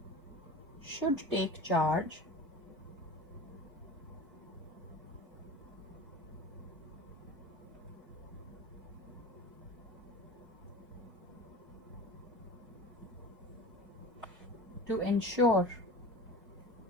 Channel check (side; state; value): both; normal; correlation 0.35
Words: should take charge to ensure